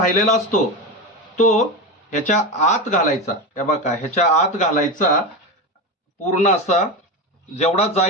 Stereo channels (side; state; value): both; normal; correlation 0.19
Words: असतो तो ह्याच्या आत घालायचा. हे बघा ह्याच्या आत घालायचा, पूर्ण असा जेवढा